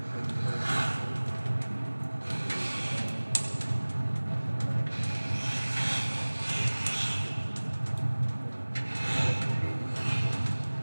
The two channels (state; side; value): inverted; both; correlation -1.00